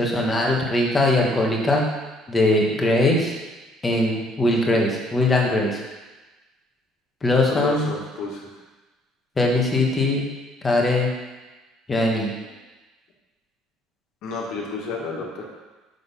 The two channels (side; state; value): both; normal; correlation 0.65